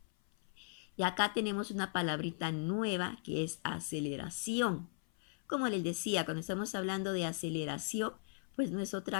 Y acá tenemos una palabrita nueva que es aceleración. Como les decía, cuando estamos hablando de aceleración, pues no es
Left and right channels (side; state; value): right; silent; 53 dB below the other